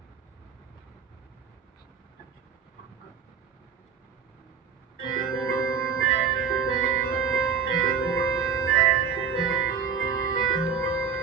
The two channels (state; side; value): quieter; left; 6.6 dB